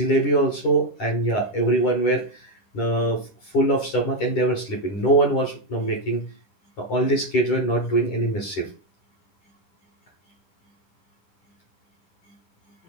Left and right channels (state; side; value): late; right; 10 ms